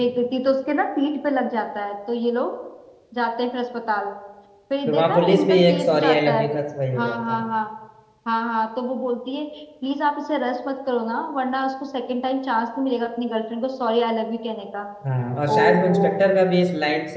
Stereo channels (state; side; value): identical; both; correlation 1.00